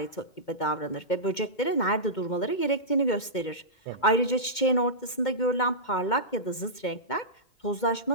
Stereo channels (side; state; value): right; late; 2.2 ms